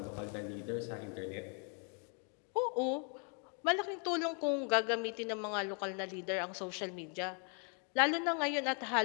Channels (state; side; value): quieter; right; 39.8 dB